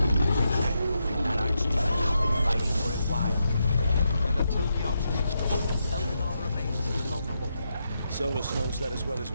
Solus knows that as well as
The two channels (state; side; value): inverted; both; correlation -0.83